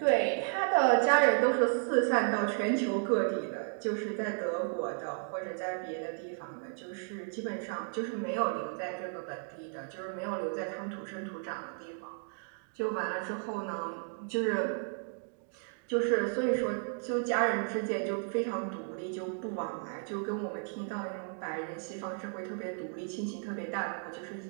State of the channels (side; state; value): left; silent; 55 dB below the other